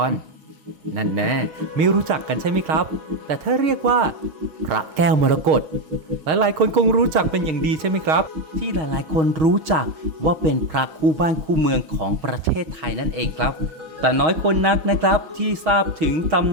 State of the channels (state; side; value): late; left; 6.3 ms